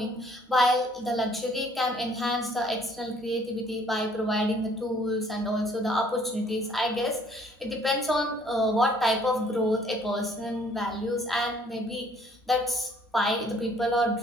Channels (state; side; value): normal; both; correlation 0.60